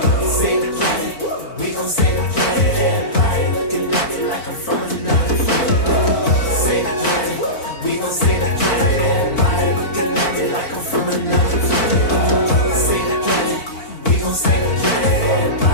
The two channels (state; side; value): late; right; 4.6 ms